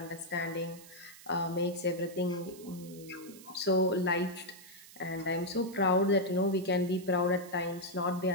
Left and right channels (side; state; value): right; noise; hiss, 19 dB below the sound